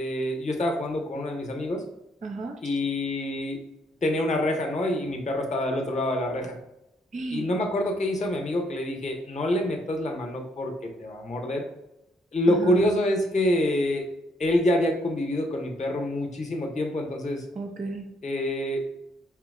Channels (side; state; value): both; normal; correlation 0.71